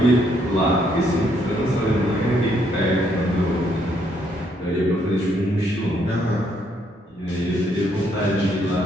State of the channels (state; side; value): normal; both; correlation 0.71